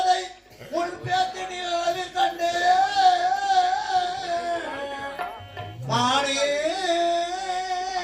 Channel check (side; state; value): both; identical; correlation 1.00